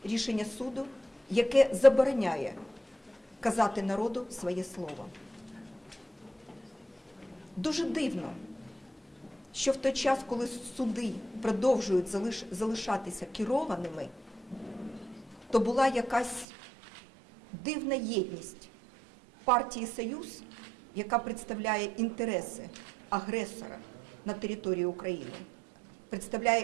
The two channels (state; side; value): drops out; left; at 16.4 s